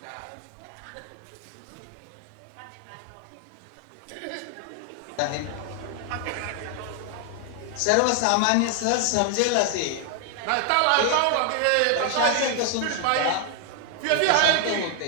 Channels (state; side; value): different; both; correlation 0.00